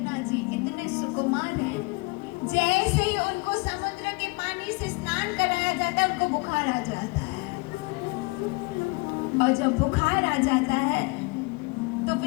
जी इतने सुकुमार हैं, जैसे ही उनको समुद्र के पानी से स्नान कराया जाता है उनको बुखार आ जाता है, और जब बुखार आ जाता है तो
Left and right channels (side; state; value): right; quieter; 27.2 dB